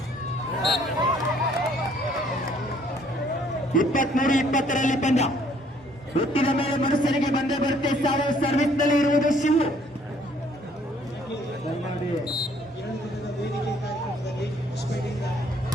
23-20ರಲ್ಲಿ ಪಂದ್ಯ. ಹುಟ್ಟಿದ ಮೇಲೆ ಮನುಷ್ಯನಿಗೆ ಬಂದೇ ಬರುತ್ತೆ ಸಾವು. ಸರ್ವಿಸ್ ನಲ್ಲಿ ಇರುವುದು ಶಿವು.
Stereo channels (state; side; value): normal; both; correlation 0.62